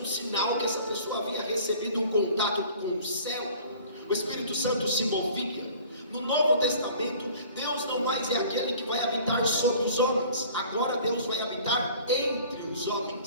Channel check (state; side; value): inverted; both; correlation -0.48